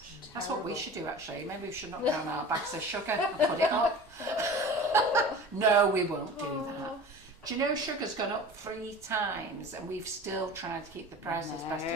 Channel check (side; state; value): both; normal; correlation 0.38